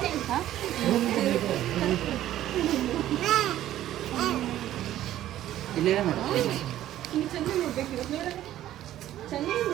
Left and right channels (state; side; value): quieter; left; 13.0 dB